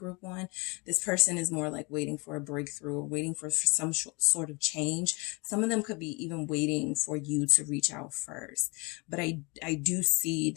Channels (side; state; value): right; quieter; 28.6 dB